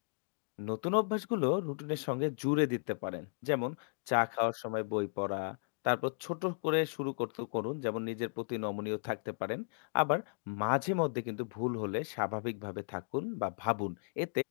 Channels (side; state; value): right; silent; digital silence